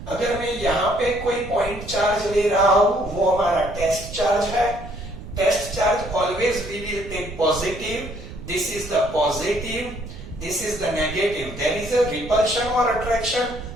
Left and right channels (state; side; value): noise; right; rumble, 13 dB below the sound